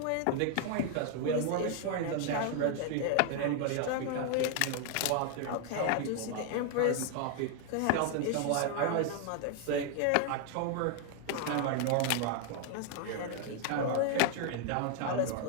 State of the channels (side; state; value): both; different; correlation 0.00